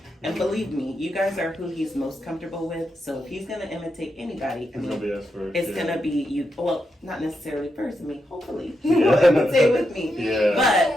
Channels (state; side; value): normal; both; correlation 0.84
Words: And believe me, you guys are who he's most comfortable with. So if he's gonna imitate anybody, I It's gonna mean, be us first. it's yeah. gonna be you. Well, not necessarily first. I mean, hopefully he Yeah. will imitate with me. Yeah. But